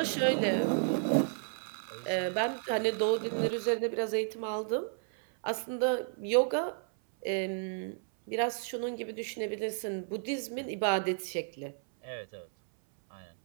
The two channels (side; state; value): left; silent; 56 dB below the other